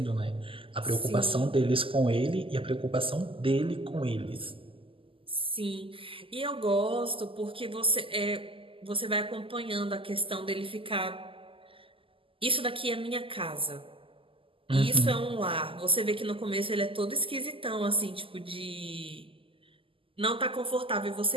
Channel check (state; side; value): late; left; 0.26 ms